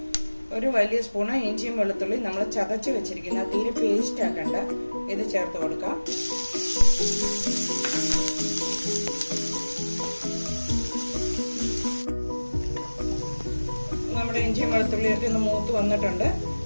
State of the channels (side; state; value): both; inverted; correlation -1.00